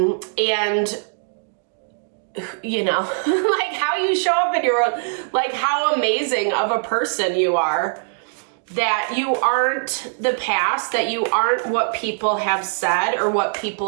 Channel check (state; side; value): silent; left; digital silence